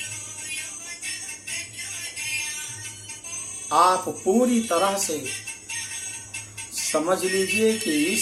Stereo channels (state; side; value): identical; both; correlation 1.00